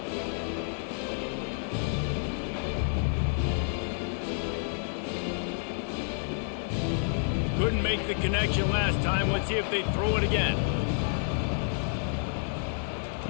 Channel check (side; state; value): right; silent; 58 dB below the other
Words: Couldn't make the connection last time. Let's see if they throw it again.